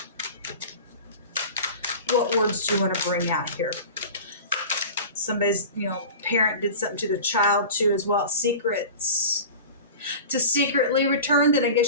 What words do you want to bring out here? Somebody's, you know, parent did something to the child too as well. Secrets. To secretly return, then I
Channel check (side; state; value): both; inverted; correlation -0.34